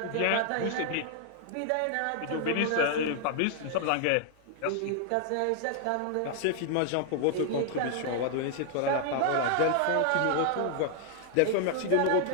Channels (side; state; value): both; different; correlation 0.00